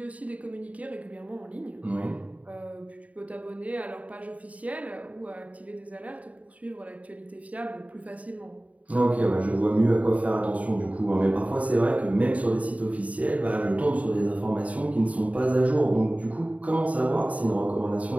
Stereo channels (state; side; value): late; left; 0.069 ms